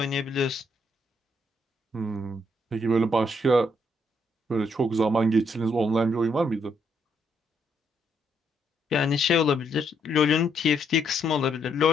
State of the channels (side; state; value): both; normal; correlation 0.73